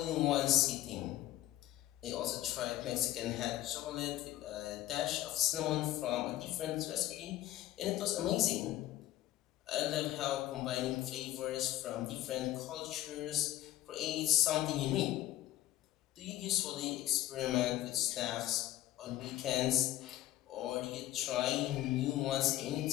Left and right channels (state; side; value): quieter; right; 14.4 dB